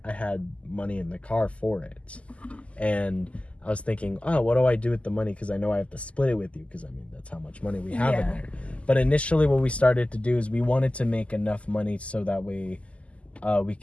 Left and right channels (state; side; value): late; right; 0.062 ms